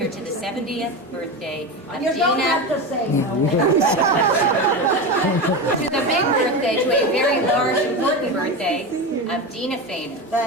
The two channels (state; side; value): normal; both; correlation 0.21